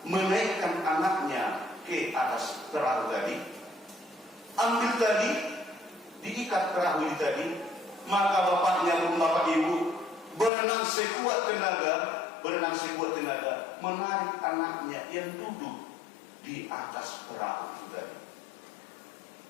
menaikkan anaknya ke atas perahu tadi, ambil tadi, diikat perahu tadi, maka bapaknya pun Bapak Ibu berenang sekuat tenaga, menarik anaknya yang duduk di atas perahu itu tadi.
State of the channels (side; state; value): right; drops out; at 10.5 s